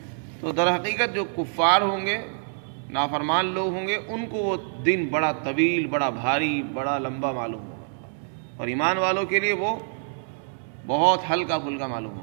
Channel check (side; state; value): left; silent; digital silence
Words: تو در حقیقت جو کفار ہوں گے، نافرمان لوگ ہوں گے، ان کو وہ دن بڑا طویل، بڑا بھاری، بڑا لمبا معلوم ہوگا، اور ایمان والوں کے لیے وہ بہت ہلکا پھلکا معلوم